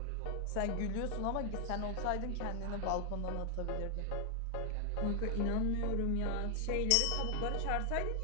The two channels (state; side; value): different; both; correlation 0.00